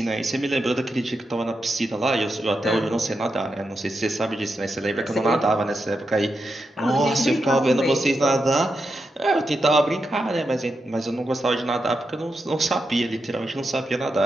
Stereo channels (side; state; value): both; normal; correlation 0.86